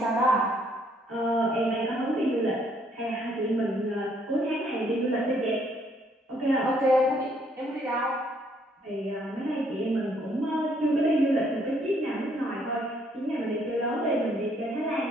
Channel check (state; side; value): normal; both; correlation 0.67